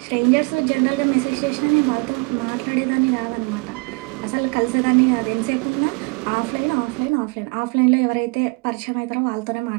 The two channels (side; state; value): left; quieter; 30.9 dB